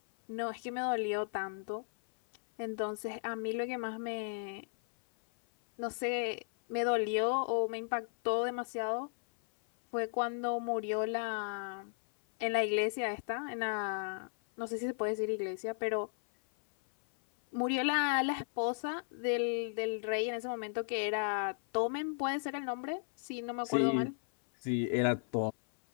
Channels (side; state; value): right; silent; 54 dB below the other